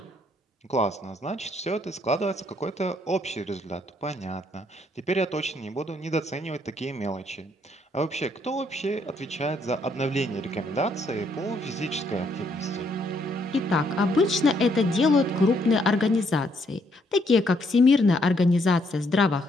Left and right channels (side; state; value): both; normal; correlation 0.71